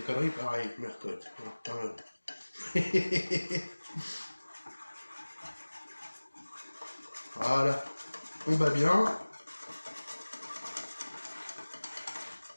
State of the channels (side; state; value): both; inverted; correlation -1.00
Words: conneries, pareil, Mercotte. Voilà, on bat bien.